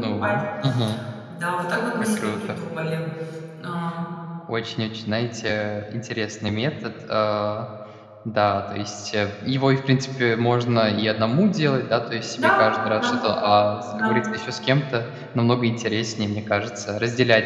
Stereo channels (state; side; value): identical; both; correlation 1.00